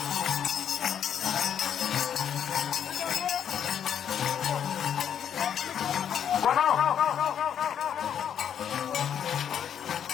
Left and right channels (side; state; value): right; quieter; 8.9 dB